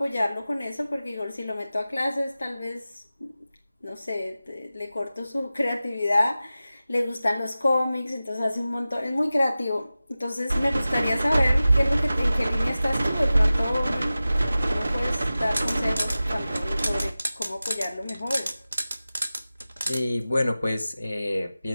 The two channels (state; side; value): inverted; both; correlation -0.95